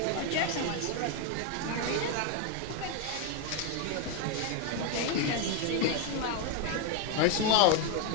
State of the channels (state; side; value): different; both; correlation 0.01